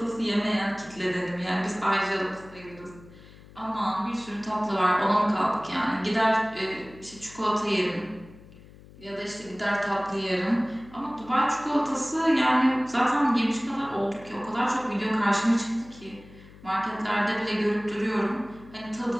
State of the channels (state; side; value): noise; left; hum, 21 dB below the sound